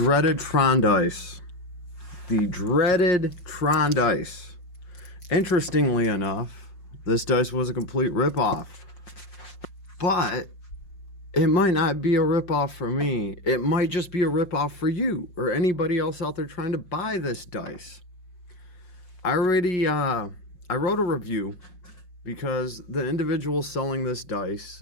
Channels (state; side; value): late; right; 5.6 ms